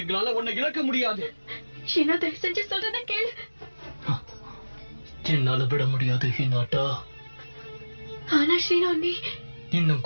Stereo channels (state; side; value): inverted; both; correlation -1.00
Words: உன்னை இழக்க முடியாது. ஷீனா, தயவு செஞ்சு சொல்றத கேளு. என்னால விட முடியாது ஹினாட்டா. ஆனா ஷீனா, நீ இன்னும்